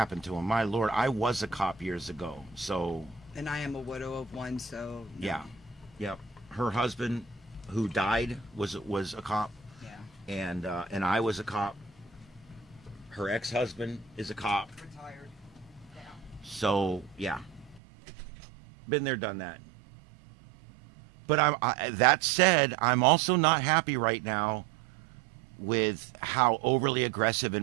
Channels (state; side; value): drops out; left; at 17.8 s